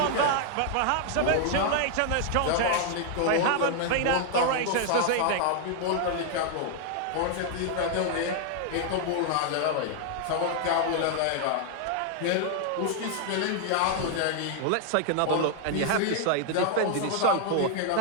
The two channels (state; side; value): different; both; correlation 0.00